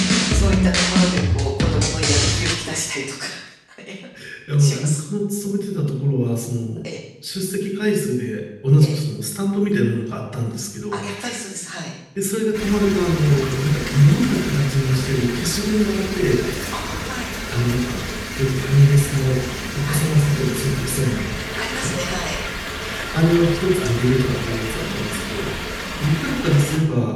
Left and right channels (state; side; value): identical; both; correlation 1.00